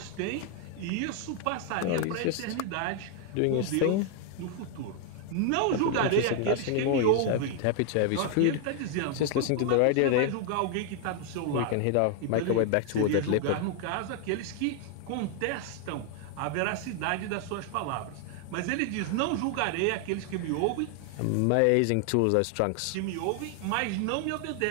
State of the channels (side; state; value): both; different; correlation 0.00